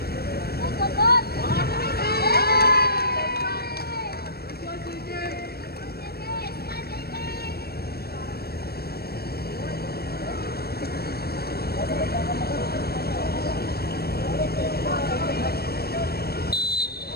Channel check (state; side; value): late; right; 0.46 ms